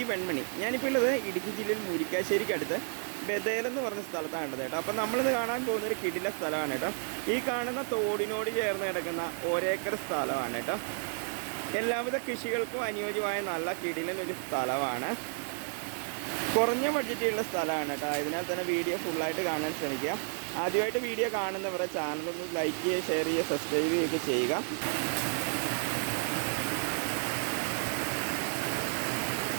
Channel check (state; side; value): silent; left; 57 dB below the other